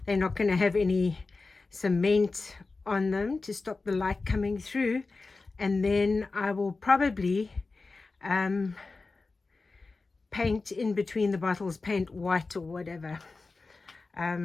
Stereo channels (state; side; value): quieter; right; 3.8 dB